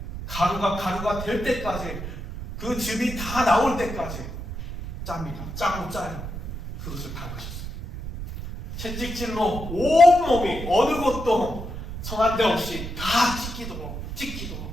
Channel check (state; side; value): noise; right; rumble, 8 dB below the sound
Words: 가루가 될 때까지, 그 즙이 다 나올 때까지 짭니다. 짜고 짜요. 그것을 밟으셨어요. 채찍질로 온몸이 어느 곳도 성한 데 없이 다 찢기도록